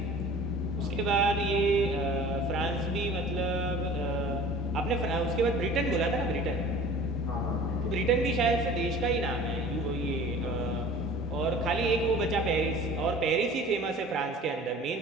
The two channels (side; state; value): both; normal; correlation 0.44